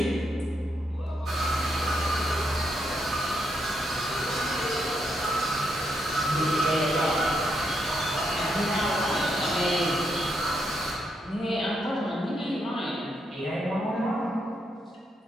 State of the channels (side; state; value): both; normal; correlation 0.78